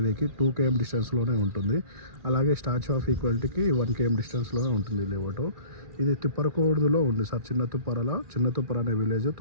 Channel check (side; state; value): left; late; 2.4 ms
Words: 2 km డిస్టెన్స్లోనే ఉంటుంది. అలాగే స్టాచ్యూ ఆఫ్ ఈక్వాలిటీకి 1 km డిస్టెన్స్లోనే ఉంటుంది లేవటు. ఇది తుప్పరకూర్దులో ఉంది సార్. చిన్న తుప్పర అనే విలేజ్